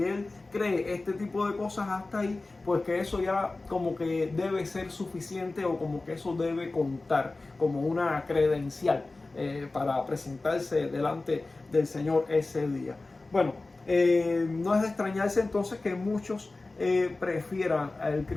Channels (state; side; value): quieter; right; 3.3 dB